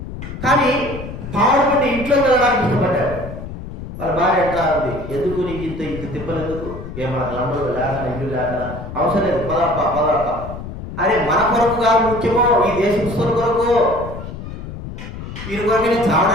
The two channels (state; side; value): noise; left; rumble, 10 dB below the sound